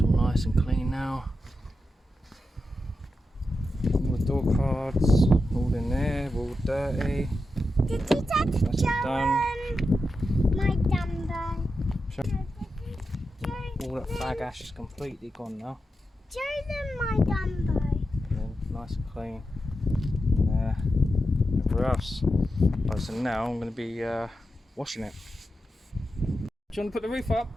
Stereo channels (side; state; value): both; normal; correlation 0.89